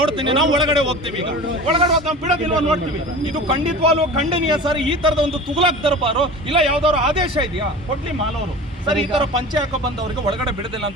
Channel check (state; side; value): normal; both; correlation 0.36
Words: ನಾವು ಒಳಗಡೆ ಹೋಗ್ತೀವಿ. ಈಗ ಒಳಗಡೆ ಹೋದ್ ನಾವು ಬಿಡೋದಿಲ್ವ ನೋಡ್ತೀವಿ. ಇದು ಖಂಡಿತವಾಗ್ಲೂ ಖಂಡನೀಯ ಸರ್. ಈ ತರದ ಒಂದು ತುಗ್ಲಕ್ ದರ್ಬಾರು ಇಲ್ಲ, ಯಾವ್ದಾದ್ರು ಆದೇಶ ಇದೆಯಾ? ಕೊಡ್ಲಿ ಮಾಲವರು ಸರ್. ಈ ತರ ಪಂಚೆ ಹಾಕೋ ಬಂದವರಿಗೆ ಒಳಗಡೆ ಬಿಡೋದಿಲ್ಲ